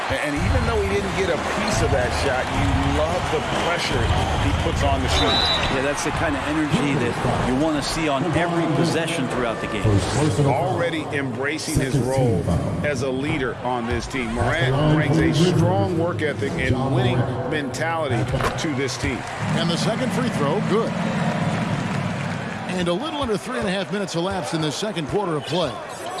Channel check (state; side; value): identical; both; correlation 1.00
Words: And even though he didn't get a piece of that shot, you love the pressure he puts on the shooter. Yeah, that's the kind of energy that you want to see on every possession throughout the game. Already embracing his role as a leader on this team. Morant brings a strong work ethic and winning mentality to this team. And the second free throw, good. And a little under 3.5 minutes elapsed in the second quarter of play.